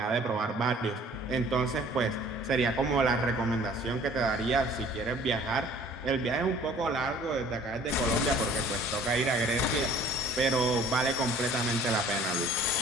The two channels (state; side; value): normal; both; correlation 0.52